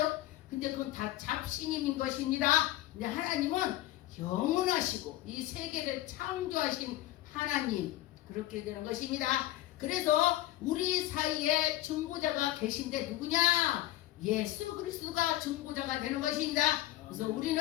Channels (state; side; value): quieter; right; 15.5 dB